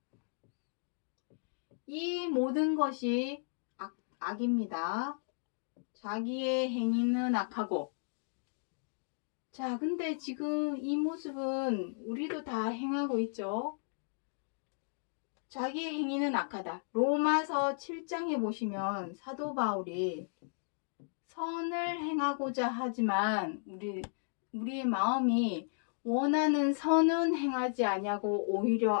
이 모든 것이 악입니다. 자기의 행위는 악하고. 자, 근데 지금 이 모습은 우리도 다 행하고 있죠. 자기의 행위는 악하다. 로마서 7장에 보시면 사도 바울이 선을 행하고자 하지만 우리의 마음이 원하는 선은 행하지 아니하고 오히려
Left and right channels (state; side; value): silent; right; digital silence